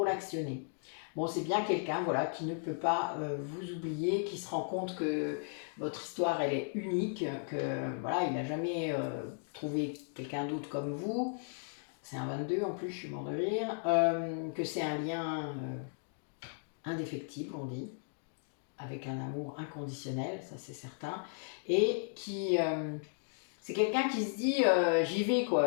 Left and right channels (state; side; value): silent; right; digital silence